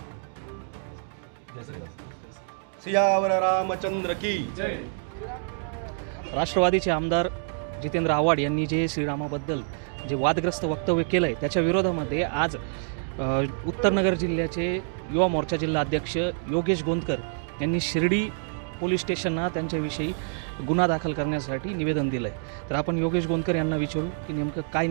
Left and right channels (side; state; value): left; silent; digital silence